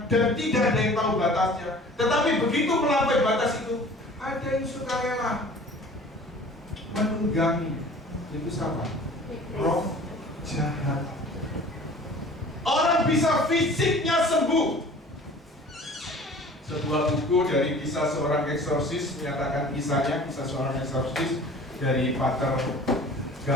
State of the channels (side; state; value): both; normal; correlation 0.45